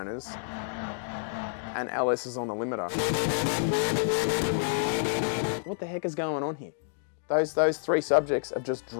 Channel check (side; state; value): right; silent; digital silence